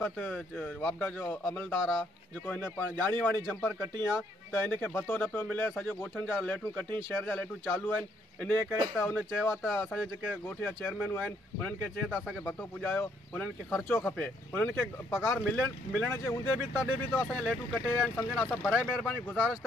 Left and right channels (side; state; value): both; normal; correlation 0.70